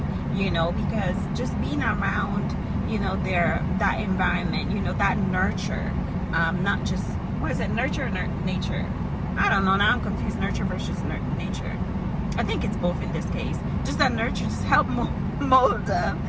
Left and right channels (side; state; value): both; identical; correlation 1.00